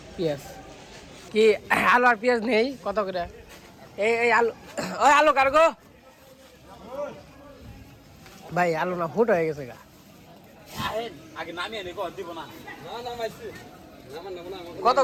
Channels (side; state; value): both; identical; correlation 1.00